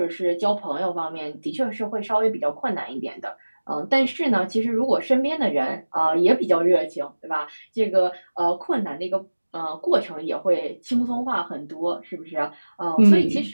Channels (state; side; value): inverted; both; correlation -1.00